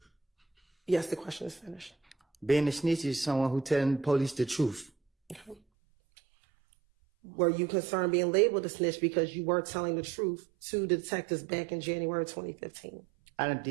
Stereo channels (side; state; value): left; drops out; at 5.6 s